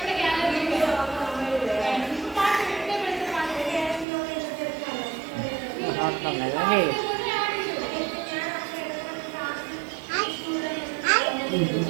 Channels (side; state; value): left; drops out; at 4.0 s